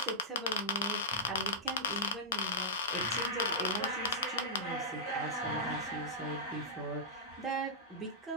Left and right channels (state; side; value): normal; both; correlation -0.13